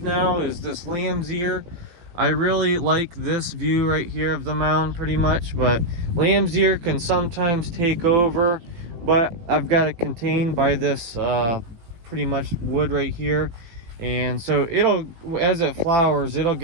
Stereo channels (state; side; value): late; left; 18 ms